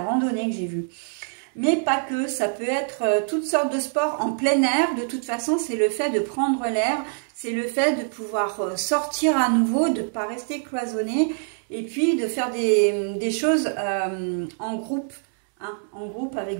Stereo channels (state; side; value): silent; left; 62 dB below the other